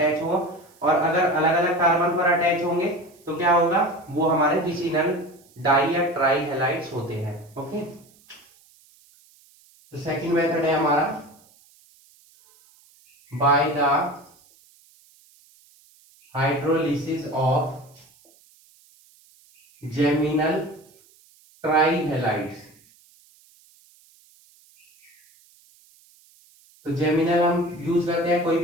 हो, और अगर अलग अलग कार्बन पर अटैच होंगे तो क्या होगा, वो हमारे विसिनल डाई या ट्राई हैलाइड्स होते हैं। ओके, तो सेकंड मेथड है हमारा by the hydrolysis of geminal try halides. तो जेमिनल हम यूज करते हैं, कोई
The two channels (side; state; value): right; noise; hiss, 30 dB below the sound